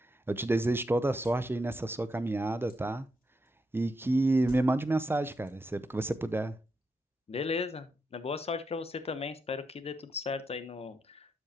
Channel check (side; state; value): both; normal; correlation 0.83